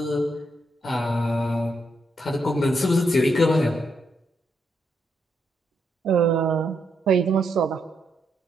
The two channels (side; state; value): both; normal; correlation 0.79